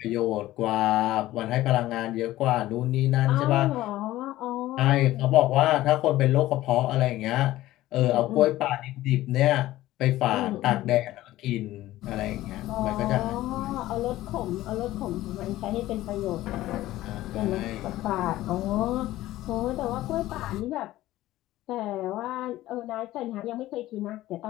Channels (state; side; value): quieter; right; 15.8 dB